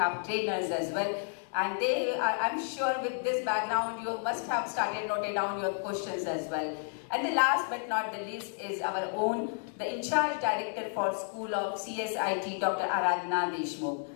trainers as well. And they are, I'm sure with this background, you must have started noting down your questions as well. And the last but not the least is our own, the in-charge director for School of CSIT, Dr. Aradhana Deshmukh.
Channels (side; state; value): right; silent; 57 dB below the other